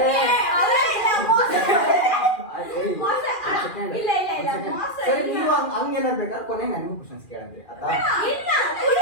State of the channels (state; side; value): late; right; 2.4 ms